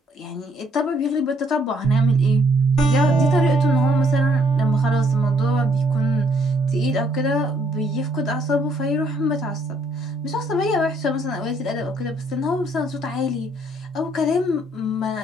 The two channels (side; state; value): both; normal; correlation 0.67